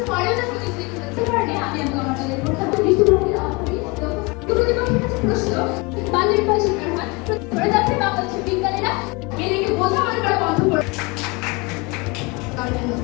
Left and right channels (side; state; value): right; quieter; 27.3 dB